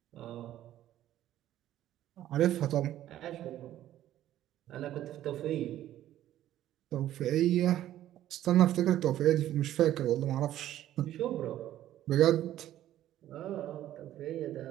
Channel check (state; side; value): quieter; left; 12.8 dB